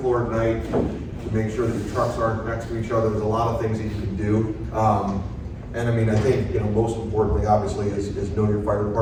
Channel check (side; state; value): both; identical; correlation 1.00